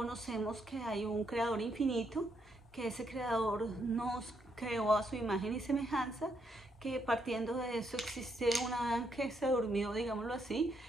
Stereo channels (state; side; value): normal; both; correlation 0.76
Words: que hay un creador infinito, que ese creador nos creó a su imagen y semejanza, que partiendo de eso existe un Adán que se durmió, digámoslo así,